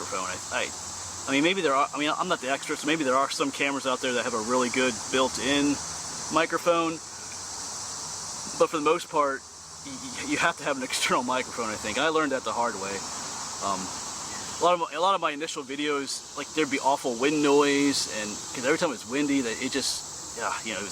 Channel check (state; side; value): identical; both; correlation 1.00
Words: I mean, maybe there are, I mean, I'm not the expert, so maybe there are some cameras out there that have a really good built-in microphone, but for the most part, you have to have an external microphone, I think. I learned that the hard way. A lot of my initial videos, like there'd be awful wind noise, and because every time it was windy, that it just, yeah, you know,